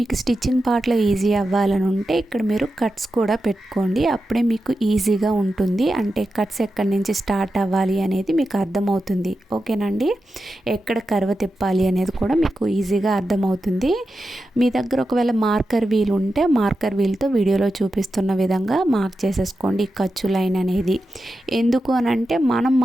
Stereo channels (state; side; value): normal; both; correlation 0.90